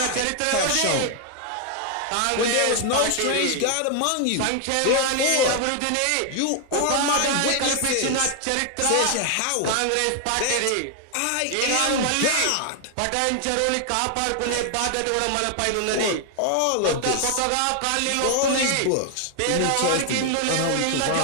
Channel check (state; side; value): different; both; correlation 0.00